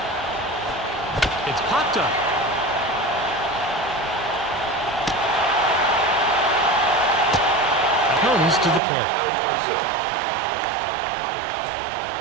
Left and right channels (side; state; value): left; drops out; at 8.8 s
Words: It's popped up. Comes to the plate.